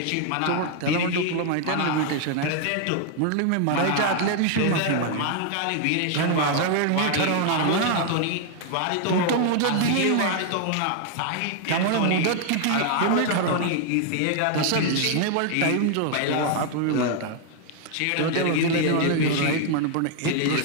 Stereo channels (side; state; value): both; different; correlation 0.00